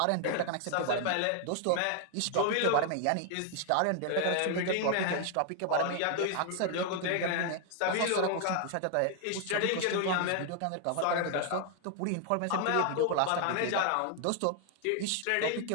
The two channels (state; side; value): different; both; correlation 0.00